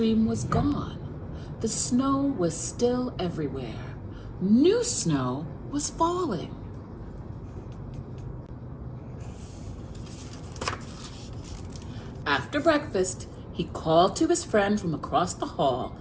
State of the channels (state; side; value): identical; both; correlation 1.00